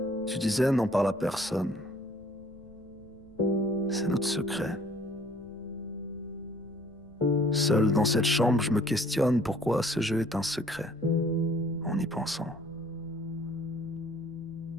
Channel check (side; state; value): left; noise; rumble, 26 dB below the sound